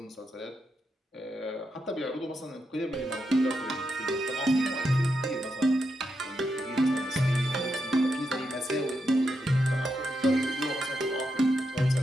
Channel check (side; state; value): both; normal; correlation 0.84